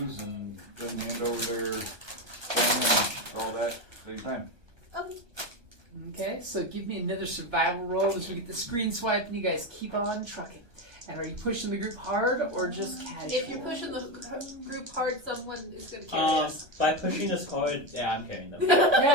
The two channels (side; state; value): left; late; 1.3 ms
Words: and then hand over their thing and all that same time. Okay. Okay, so give me another survival roll as we get the screen swipe and you guys keep on trucking. And are you pushing the group hard or just casual? If you're pushing the group hard, someone is going to carry us. By pushing us hard, yeah, I'm carrying them.